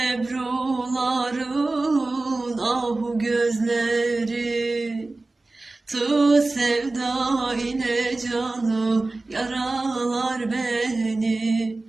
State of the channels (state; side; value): quieter; left; 3.2 dB